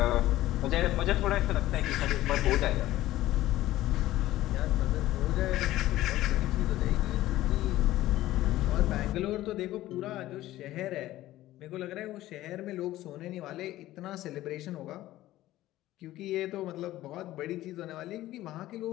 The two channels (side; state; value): right; quieter; 15.4 dB